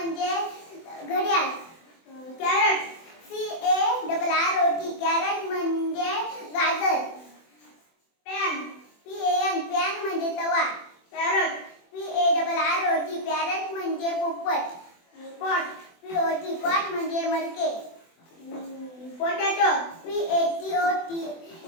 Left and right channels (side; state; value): right; late; 24 ms